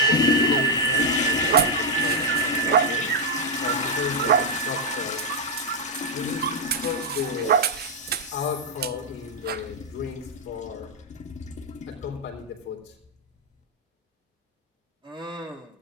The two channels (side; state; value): both; normal; correlation -0.02